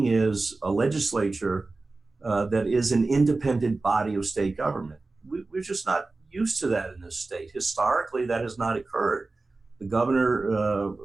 is a legislature that is an independent body of state government. We're just not used to that in this state. Historically, that has not occurred. The governor,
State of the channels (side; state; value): left; quieter; 3.5 dB